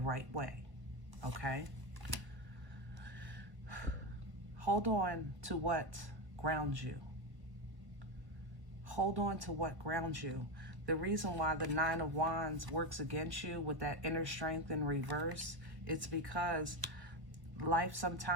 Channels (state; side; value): late; left; 1.1 ms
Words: way. Okay? Hold on to what grounds you. Hold on to what grounds you. The reason why the Nine of Wands works against you with that inner strength in reverse, it's because life